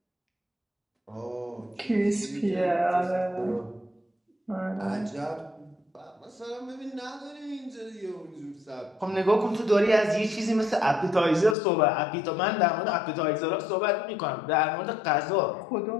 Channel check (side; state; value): right; drops out; at 11.6 s